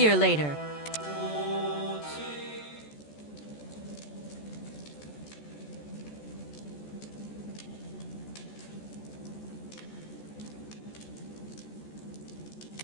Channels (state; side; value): late; right; 14 ms